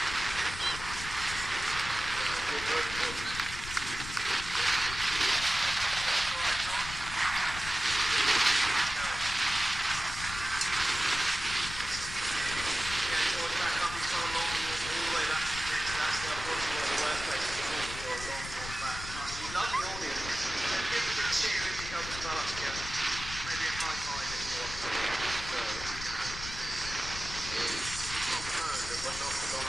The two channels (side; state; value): left; noise; rumble, 10 dB below the sound